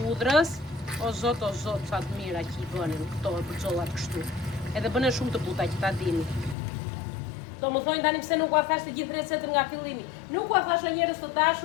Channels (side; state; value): right; drops out; at 6.6 s